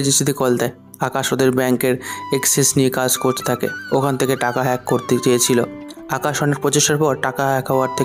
এজেন্সিতে কল দেয়। আকাশ ওদের ব্যাংকের অ্যাক্সেস নিয়ে কাজ করতে থাকে। ওখান থেকে টাকা হ্যাক করতে চেয়েছিল। আকাশ অনেক প্রচেষ্টার পর টাকা হ্যাক হওয়ার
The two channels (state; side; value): identical; both; correlation 1.00